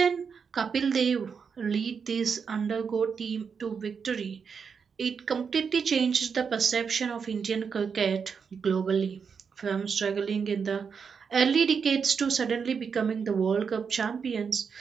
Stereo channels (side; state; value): left; quieter; 6.1 dB